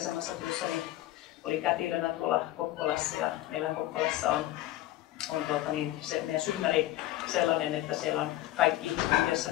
työssäni olin kätilönä tuolla Kokkolassa ja meillä Kokkolassa on se meidän synnäri sellainen, että siellä on kaikki yhdessä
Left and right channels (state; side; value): quieter; right; 15.4 dB